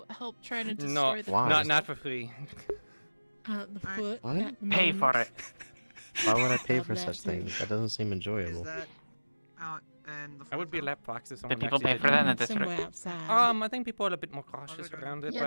help try to destroy No, the Why? not for free. the foot. What? at the Pay for moment. it. Why would I pay Love for that such too. things? That doesn't seem Is enjoyable. that out in the I would be a forefront? lap box if someone Did people actually pay for that in the Somewhere district? outside. I think people are a bit more cautious around it, Yeah, but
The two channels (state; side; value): inverted; both; correlation -1.00